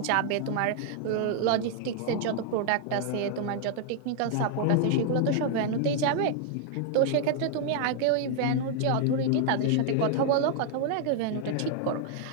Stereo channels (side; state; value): both; different; correlation 0.00